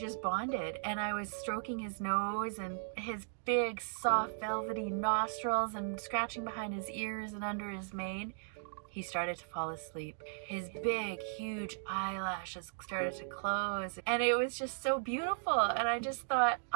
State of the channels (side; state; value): left; silent; digital silence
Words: bonded, and I was stroking his nose and his big soft velvety nostrils and scratching behind his ears and under his mane. He started to fall asleep. His big huge eyelashes started to close, and it was just so beautiful, and I just thought,